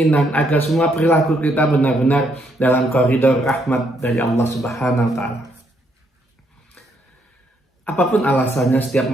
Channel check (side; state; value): both; normal; correlation 0.73